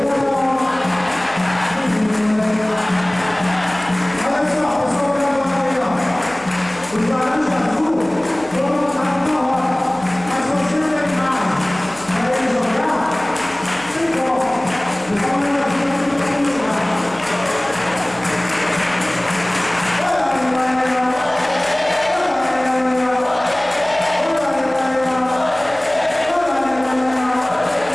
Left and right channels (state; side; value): noise; right; hum, 22 dB below the sound